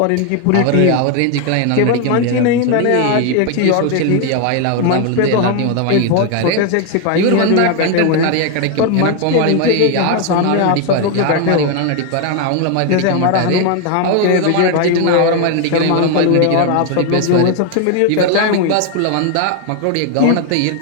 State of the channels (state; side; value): different; both; correlation 0.01